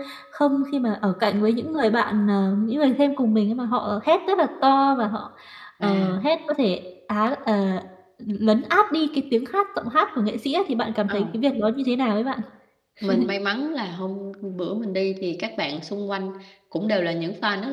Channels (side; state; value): both; identical; correlation 1.00